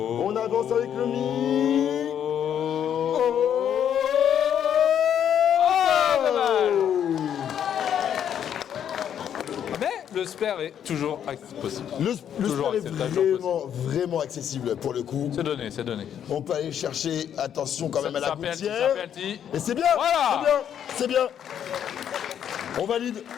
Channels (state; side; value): quieter; right; 9.3 dB